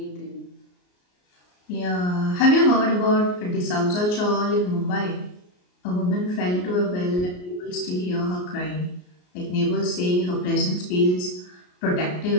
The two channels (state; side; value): late; right; 33 ms